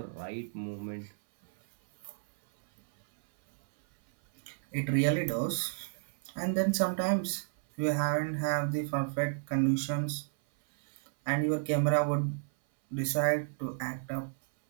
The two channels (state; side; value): silent; left; 56 dB below the other